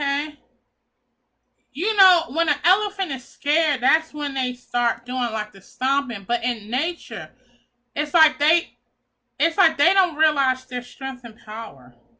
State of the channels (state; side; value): identical; both; correlation 1.00